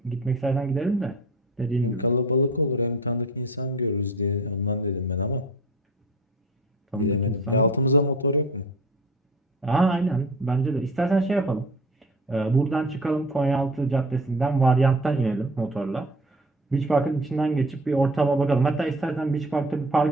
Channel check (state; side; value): normal; both; correlation 0.41